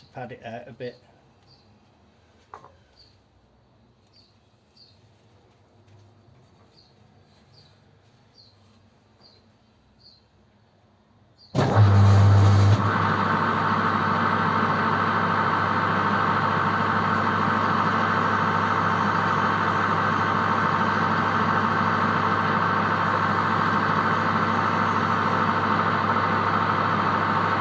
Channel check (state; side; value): identical; both; correlation 1.00